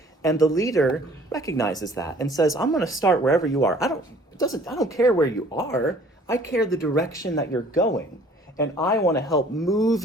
And the leader recognizes that and says, I'm going to start wherever you are. I don't care where you are. I care the direction that you're going. And I want to help move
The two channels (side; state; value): both; normal; correlation 0.54